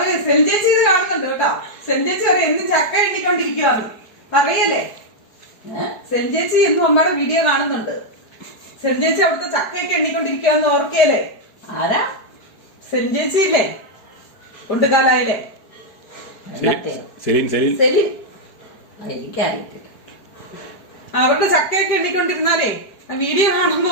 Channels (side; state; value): right; late; 4.7 ms